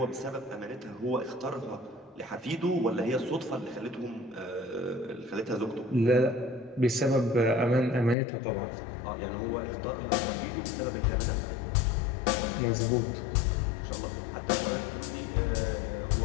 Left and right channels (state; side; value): drops out; right; at 8.2 s